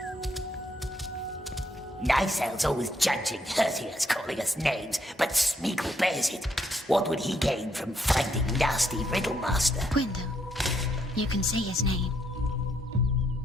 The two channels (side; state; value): both; normal; correlation 0.74